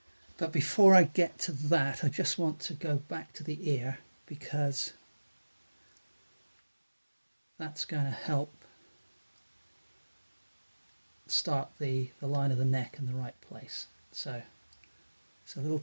But before I get to that, I just want to go back to the ear, because that's going to help start the line of the neck in the right place. So it's a little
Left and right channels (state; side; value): inverted; both; correlation -1.00